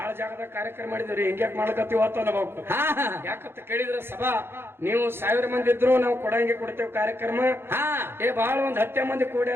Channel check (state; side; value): late; left; 0.11 ms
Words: ಜಾಗದಾಗ ಕಾರ್ಯಕ್ರಮ ಮಾಡಿದ್ರಿ. ಹಿಂಗ್ಯಾಕ್ ಮಾಡ್ಕತ್ತೀವ ಅಂತ ಅನ್ಬೇಕು. ಯಾಕಂತ ಕೇಳಿದ್ರೆ ಸಭಾ ನೀವು 1000 ಮಂದಿ ಇದ್ರು ನಾವು ಕೊಡಂಗೆ ಕಾರ್ಯಕ್ರಮ. ಬಹಳ ಒಂದ್ 10 ಮಂದಿ